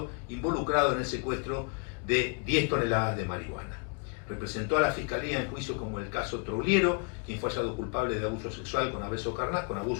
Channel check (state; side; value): quieter; right; 35.3 dB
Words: involucrado en el secuestro de 10 toneladas de marihuana. Representó a la Fiscalía en juicios como el caso Trouliero, quien fue hallado culpable de abuso sexual con abuso